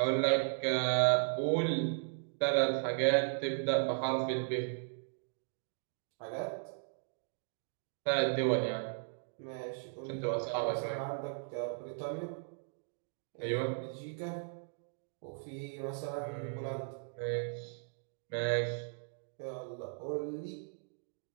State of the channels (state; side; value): silent; left; digital silence